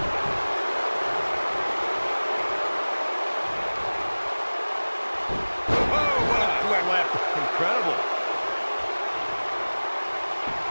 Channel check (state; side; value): inverted; both; correlation -1.00